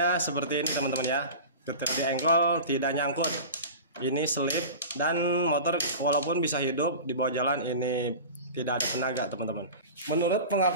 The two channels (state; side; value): inverted; both; correlation -0.33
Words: seperti ini, teman-teman ya. Ketika di engkol tidak nyangkut, ini selip, dan motor walaupun bisa hidup di bawah jalan ini tidak ada tenaga, teman-teman. Menurut